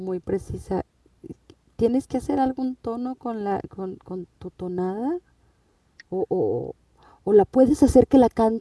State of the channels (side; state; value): both; identical; correlation 1.00